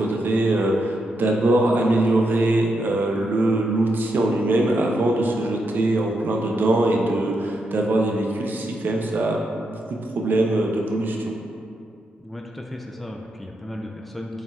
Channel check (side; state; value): both; normal; correlation 0.82